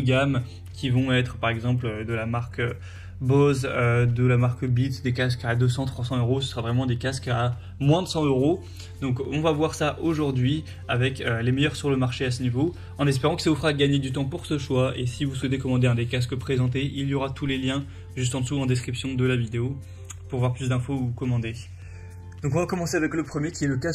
gamme qui vont être par exemple de la marque Bose, de la marque Beats, des casques à 200-300 euros. Ce sera vraiment des casques à moins de 100 euros. Donc on va voir ça aujourd'hui avec les meilleurs sur le marché à ce niveau, en espérant que ça vous fera gagner du temps pour ce choix. Et si vous souhaitez commander un des casques présentés, il y aura tous les liens juste en dessous en description de la vidéo pour voir plus d'infos ou commander. Donc on va commencer avec le premier qui est le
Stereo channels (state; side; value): identical; both; correlation 1.00